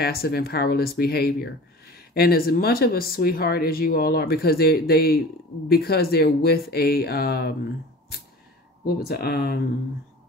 and powerless behavior. And as much of a sweetheart as you all are, because they're with a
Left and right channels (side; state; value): both; normal; correlation 0.40